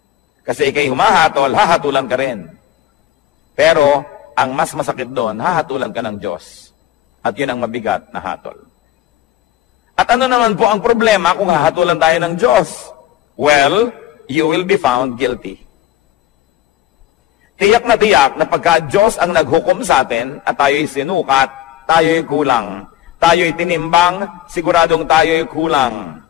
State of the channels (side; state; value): right; quieter; 13.3 dB